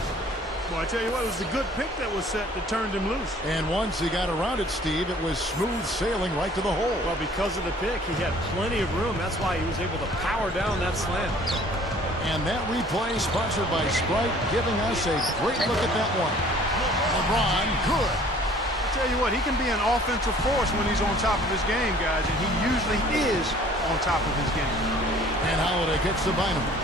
Well, I tell you what, it was a good pick that was set that turned him loose. And once he got around it, Steve, it was smooth sailing right to the hole. Well, because of the pick, he had plenty of room. That's why he was able to power down that slam. And that replay sponsored by Sprite, giving us a great look at that one. LeBron, good. I tell you what, he can be an offensive force when he's on top of his game, guys, and he usually is on top of his game. And Holiday gets to Bynum.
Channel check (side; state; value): both; normal; correlation 0.53